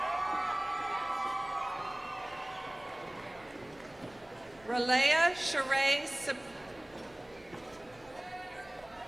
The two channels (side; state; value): right; noise; rumble, 27 dB below the sound